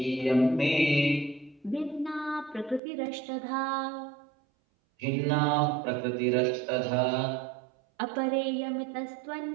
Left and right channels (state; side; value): drops out; left; at 2.8 s